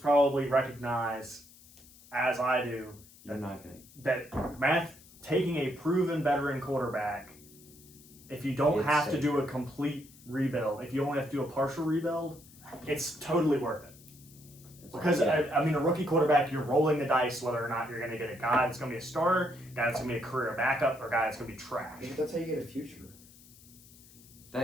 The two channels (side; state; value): left; noise; hiss, 23 dB below the sound